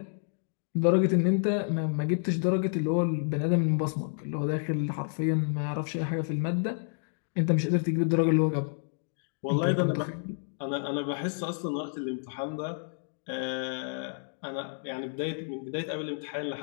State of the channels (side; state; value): right; silent; digital silence